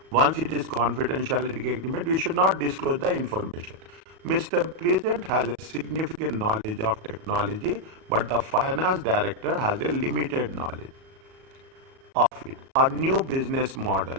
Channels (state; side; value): late; left; 37 ms